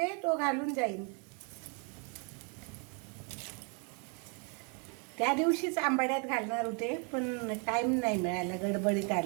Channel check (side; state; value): left; quieter; 36.7 dB